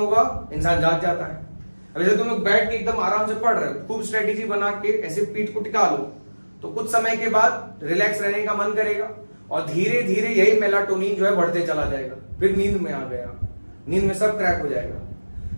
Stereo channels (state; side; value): inverted; both; correlation -1.00